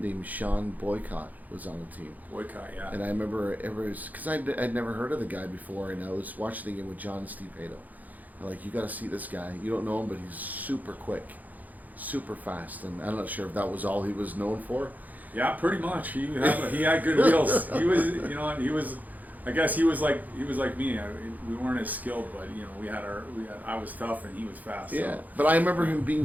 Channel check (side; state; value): left; late; 0.081 ms